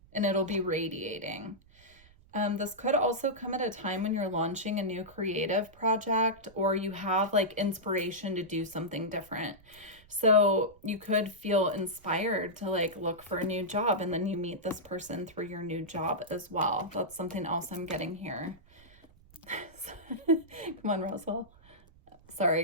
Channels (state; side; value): noise; right; rumble, 26 dB below the sound